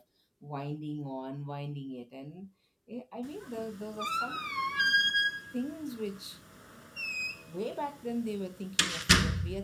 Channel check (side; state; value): both; identical; correlation 1.00